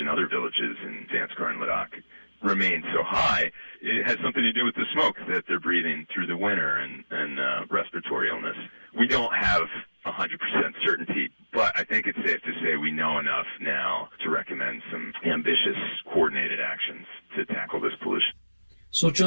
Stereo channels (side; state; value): both; inverted; correlation -1.00